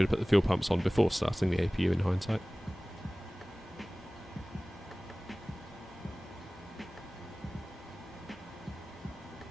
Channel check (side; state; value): both; normal; correlation 0.98